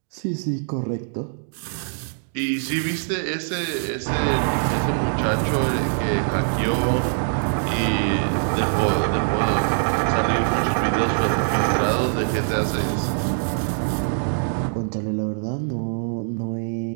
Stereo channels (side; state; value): left; silent; digital silence